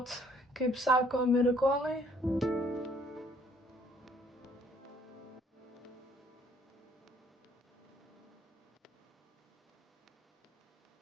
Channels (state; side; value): normal; both; correlation 0.62